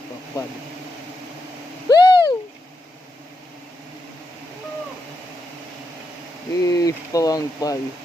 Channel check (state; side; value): normal; both; correlation 0.84